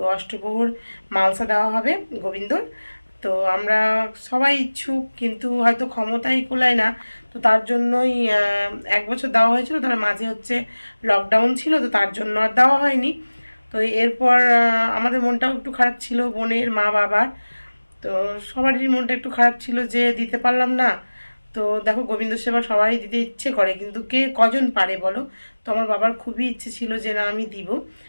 অষ্টপ্রহর মালসা দেওয়া হবে গোবিন্দর। তো আমরা সবাই ইচ্ছুক, কিন্তু হয়তো ক্ষমতাই কুলায় না, তো তার জন্যই 1 বছর দেওয়া হয়েছিল, তার মাঝে হচ্ছে লকডাউন ছিল, তো তার জন্য আর দেওয়া হয়নি। তো এরপর আমাদের মনটাও একটু খারাপ ছিল, বোনের মা বাবার, তো সবারই মনটা একটু খারাপ ছিল যে দিতে পারলাম না। তো দেখো গোবিন্দ সেবা সবাই দিতে ইচ্ছে করে, কিন্তু কে কজন পারে বলো। তো আমার বাবার খুবই ইচ্ছে ছিল যে না আমি দিব।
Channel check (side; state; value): both; inverted; correlation -1.00